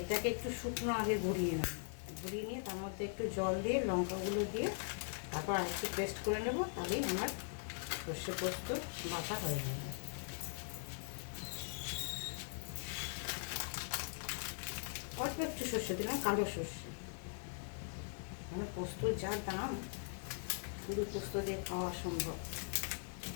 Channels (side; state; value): right; silent; digital silence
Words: একটু শুকনো আগে গুঁড়িয়ে নেব, গুঁড়িয়ে নিয়ে তার মধ্যে একটু জল দিয়ে লঙ্কাগুলো দিয়ে তারপর আর একটু পেস্ট করে নেব, তাহলেই আমার সর্ষে পোস্ত বাটা হয়ে যাবে। অল্প একটু সর্ষে দিলাম, কালো সর্ষে, মানে পোস্তর যা দাম শুধু পোস্ত দিয়ে খাওয়া সম্ভব।